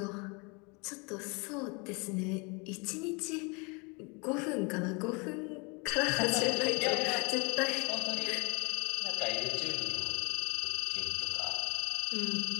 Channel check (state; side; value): quieter; right; 30.6 dB